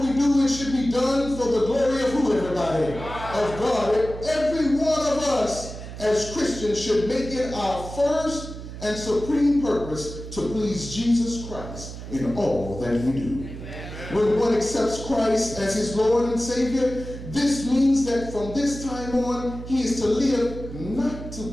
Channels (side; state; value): right; noise; hum, 11 dB below the sound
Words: do, it should be done for the glory of who, everybody? Of God. Every one of us as Christians should make it our first and supreme purpose to please Jesus Christ in all that we do. When one accepts Christ as his Lord and Savior, This means that from this time on, he is to live not to